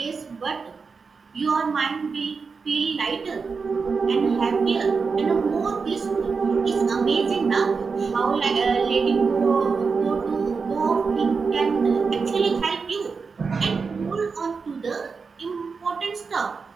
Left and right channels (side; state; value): left; quieter; 5.0 dB